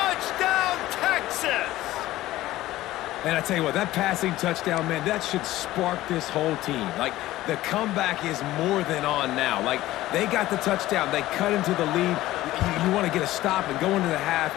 Texas! And I tell you what, that passing touchdown, man, that should spark this whole team. Like, the comeback is more than on now. Like, they got the touchdown. They cut into the lead. You want to get a stop and go into the half,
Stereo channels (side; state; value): right; quieter; 16.0 dB